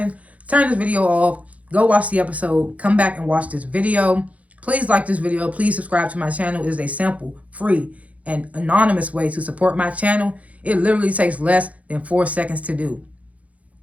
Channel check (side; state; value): left; late; 0.067 ms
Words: turn this video off, go watch the episode, come back and watch this video. Please like this video. Please subscribe to my channel. It is a simple, free, and anonymous way to support my channel. It literally takes less than 4 seconds to do.